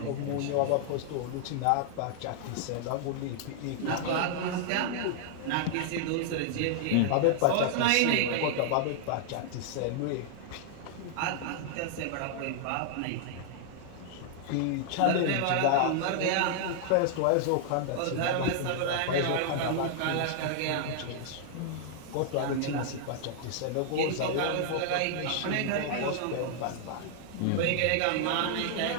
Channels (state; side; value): different; both; correlation -0.01